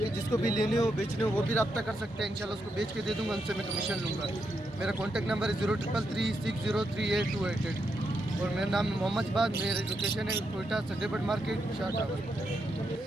जिसको भी लेने हो बेचने हो वो भी रब्ता कर सकते हैं, इंशाल्लाह उसको बेच के दे दूंगा, उनसे मैं कमीशन लूँगा। मेरा कॉन्टैक्ट नंबर है 0333603828 और मेरा नाम है मोहम्मद बाद। मेरी लोकेशन है कोयटा संडेबर्ड मार्केट शाह टावर।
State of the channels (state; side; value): normal; both; correlation 0.82